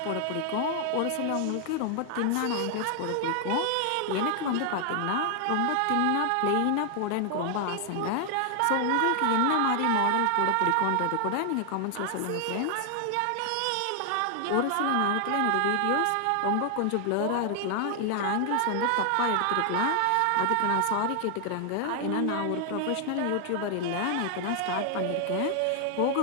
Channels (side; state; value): both; different; correlation 0.00